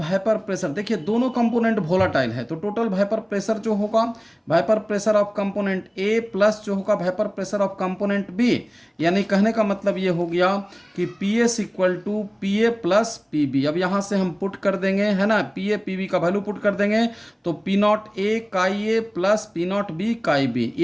प्रेशर, देखिए दोनों कंपोनेंट वोलाटाइल है, तो टोटल वेपर प्रेशर जो होगा vapour pressure of component A plus जो होगा vapour pressure of component B, यानी कहने का मतलब ये हो गया कि P S equal to P A plus P B. अब यहाँ से हम पुट कर देंगे, है ना, पी ए पी बी का वैल्यू पुट कर देंगे, तो P naught A chi A plus P naught B chi B,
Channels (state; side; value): identical; both; correlation 1.00